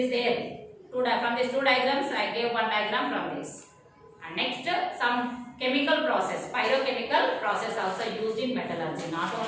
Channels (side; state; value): both; identical; correlation 1.00